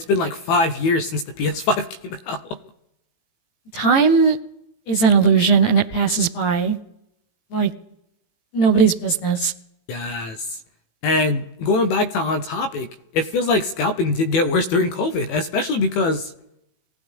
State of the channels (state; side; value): late; right; 18 ms